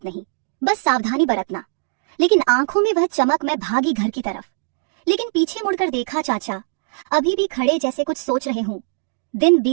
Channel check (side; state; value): left; silent; digital silence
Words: नहीं, बस सावधानी बरतना। लेकिन आंखों में वह चमक। मैं भागी घर की तरफ, लेकिन पीछे मुड़कर देखा, चाचा अभी भी खड़े जैसे कुछ सोच रहे हूं। दिन